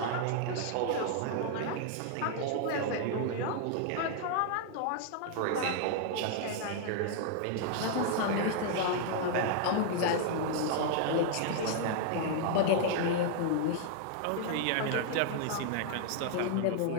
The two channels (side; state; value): both; different; correlation 0.00